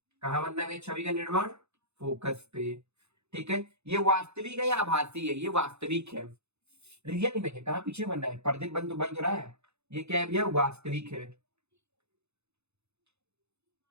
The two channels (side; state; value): left; late; 0.81 ms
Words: कहाँ बनना है छवि का निर्माण, फोकस पे, ठीक है। ये वास्तविक है या आभासी है, ये वास्तविक है, रियल इमेज है। कहाँ पीछे बनना है, पर्दे बन तो रहा है, ये क्या है भैया, वास्तविक है।